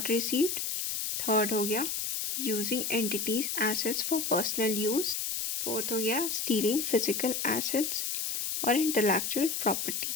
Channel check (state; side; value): noise; left; hiss, 1 dB below the sound